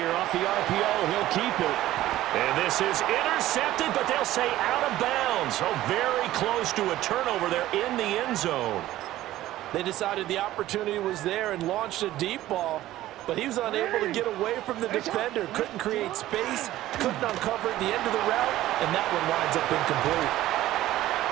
off the RPO. He'll keep it. And this is intercepted, but they'll say out of bounds. So very close to a turnover there in the end zone. They decided the opportunity was there and launched a deep ball, but he was unable to get away from the defender. Couldn't create space, couldn't uncover the end of the route, and that one winds up incomplete.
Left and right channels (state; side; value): quieter; left; 14.8 dB